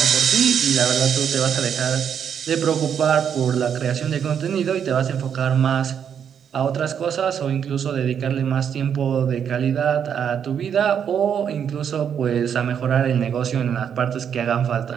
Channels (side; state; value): left; quieter; 8.1 dB